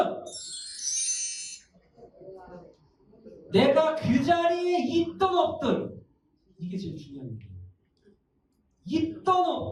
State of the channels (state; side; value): identical; both; correlation 1.00